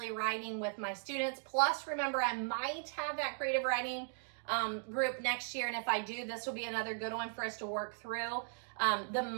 writing with my students. Plus, remember, I might have that creative writing group next year, and if I do, this will be another good one for us to work through. The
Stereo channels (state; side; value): silent; left; digital silence